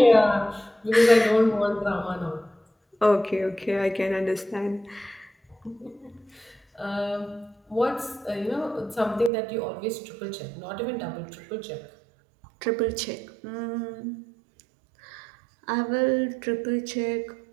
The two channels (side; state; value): left; drops out; at 9.3 s